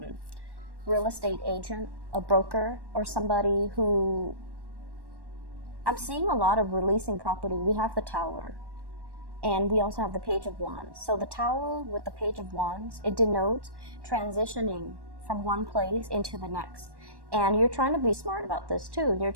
real estate agent, a broker, or somebody who... I'm seeing a lot of releasing property. We have the Tower, and we also have the Page of Wands. So the Tower with the Page of Wands, it denotes transitioning from one place into the next. And you're trying to be smart about this too. You're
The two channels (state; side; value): late; left; 1.1 ms